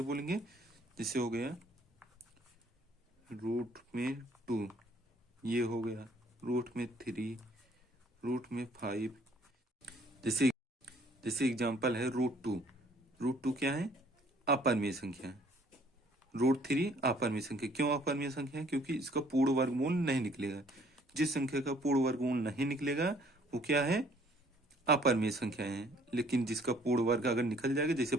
बोलेंगे? जैसे हो गया √2, ये हो गया √3, √5। जैसे एग्जांपल है √2। √2 क्या है? अपरमेय संख्या। √3 अपरमेय संख्या। क्यों अपरमेय संख्या है? क्योंकि इसका पूर्ण वर्गमूल नहीं निकलेगा। जिस संख्या का पूर्ण वर्गमूल नहीं निकलेगा वो क्या है? अपरमेय संख्या है। लेकिन जिसका पूर्ण वर्ग अगर निकल जाएगा, जैसे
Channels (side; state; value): both; normal; correlation 0.60